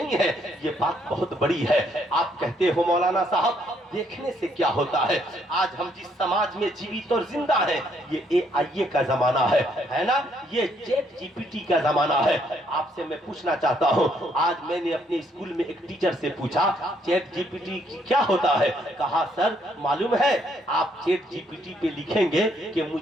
ہے، یہ بات بہت بڑی ہے۔ آپ کہتے ہو مولانا صاحب دیکھنے سے کیا ہوتا ہے؟ آج ہم جس سماج میں جیوت اور زندہ ہیں یہ AI کا زمانہ ہے نا، یہ چیٹ GPT کا زمانہ ہے۔ آپ سے میں پوچھنا چاہتا ہوں، آج میں نے اپنے اسکول میں ایک ٹیچر سے پوچھا چیٹ GPT کیا ہوتا ہے؟ کہا سر معلوم ہے آپ چیٹ GPT پہ لکھیں گے کہ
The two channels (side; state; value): both; normal; correlation 0.70